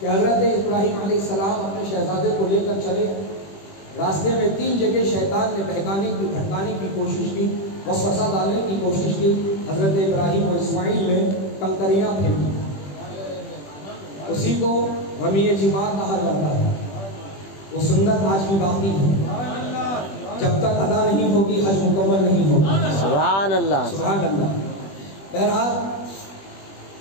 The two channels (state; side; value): late; right; 20 ms